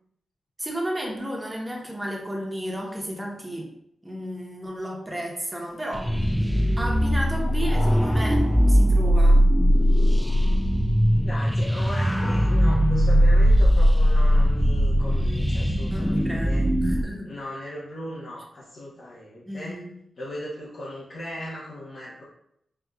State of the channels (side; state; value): both; normal; correlation 0.96